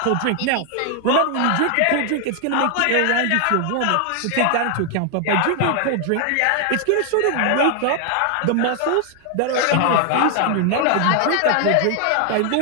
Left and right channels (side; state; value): both; different; correlation 0.00